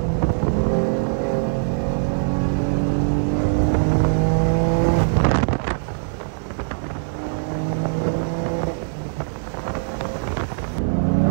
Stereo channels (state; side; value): silent; left; digital silence